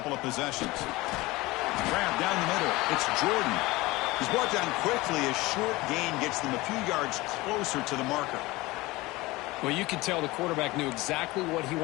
of possessions. Grab down the middle. It's Jordan. He's brought down quickly. A short gain gets them a few yards closer to the marker. Well, you could tell the quarterback knew exactly what he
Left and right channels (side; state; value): right; quieter; 20.8 dB